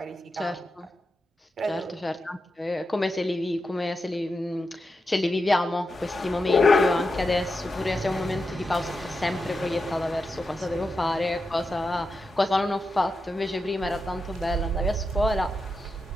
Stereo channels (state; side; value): normal; both; correlation 0.88